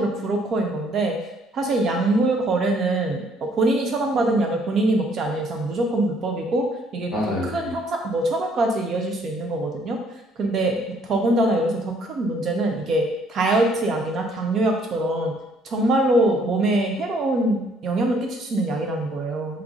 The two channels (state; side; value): normal; both; correlation 0.64